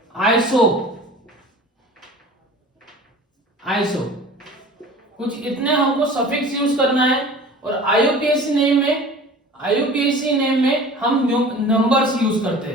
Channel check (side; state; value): both; normal; correlation 0.42